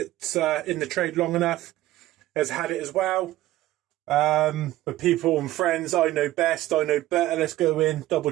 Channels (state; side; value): quieter; left; 15.6 dB